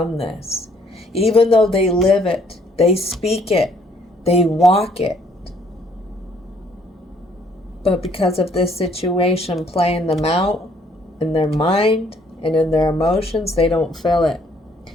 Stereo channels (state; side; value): normal; both; correlation 0.64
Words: this. Even though they live it, they speak it, they walk it. But because of this situation playing them out in their mind and in their emotions, they don't feel it